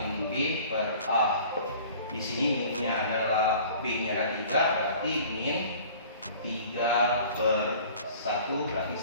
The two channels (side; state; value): both; inverted; correlation -0.47